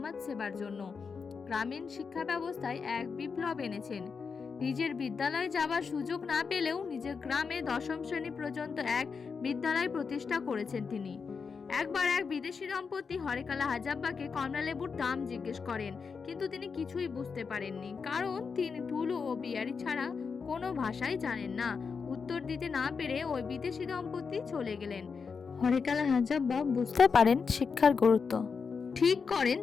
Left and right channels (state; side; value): quieter; right; 5.5 dB